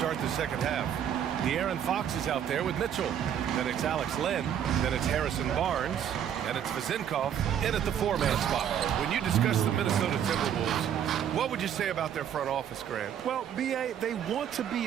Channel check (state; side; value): quieter; left; 9.3 dB